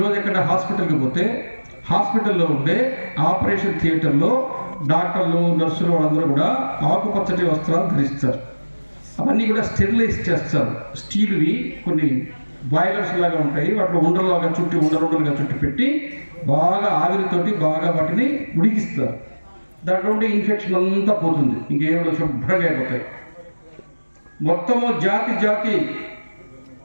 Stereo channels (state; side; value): inverted; both; correlation -1.00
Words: ఎక్కడ హాస్పిటల్కి పోతే హాస్పిటల్లో ఉండే ఆపరేషన్ థియేటర్లో డాక్టర్లు, నర్సులు వాళ్ళందరూ కూడా ఆకుపచ్చటి వస్త్రాలు ధరిస్తారు. అవన్నీ కూడా స్టెరిలైజ్ చేస్తారు. స్టీల్వి కొన్ని బాయిలర్స్ లాగా ఉంటాయి, వాటిలో ఉండలుగా చుట్టి పెట్టి బాగా ఆవిరితోటి బాగా వాటిని ఉడికిస్తారు. దాంట్లో ఉండే ఇన్ఫెక్షన్ అంతా పోతుంది, ఇంకేమో శుభ్రంగా అయిపోతాయి. మొత్తము జాతి